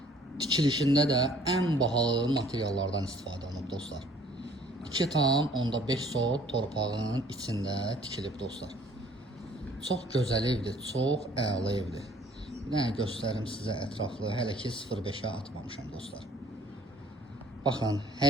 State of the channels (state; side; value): normal; both; correlation 0.56